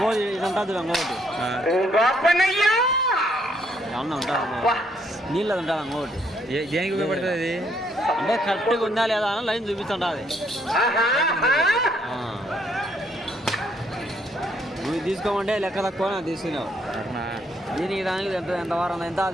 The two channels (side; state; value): both; normal; correlation 0.71